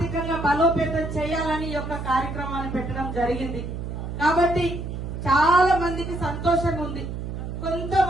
బలోపేతం చేయాలని యొక్క కార్యక్రమాన్ని పెట్టడం జరిగింది. కాబట్టి చాలా మందికి సంతోషంగా ఉంది,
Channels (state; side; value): noise; right; hum, 6 dB below the sound